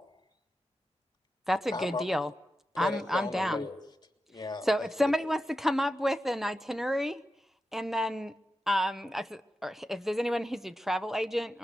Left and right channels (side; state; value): both; normal; correlation 0.91